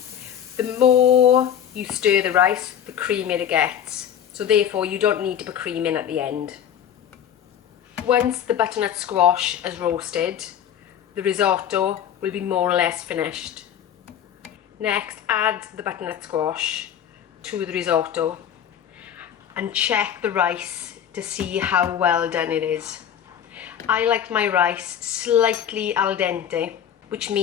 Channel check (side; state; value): right; quieter; 9.4 dB